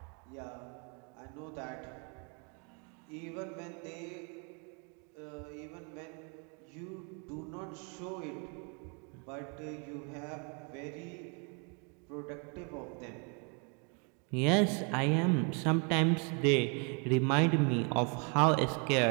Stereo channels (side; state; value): left; quieter; 36.2 dB